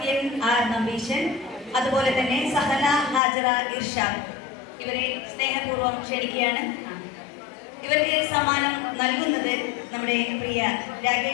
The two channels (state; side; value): drops out; right; at 3.2 s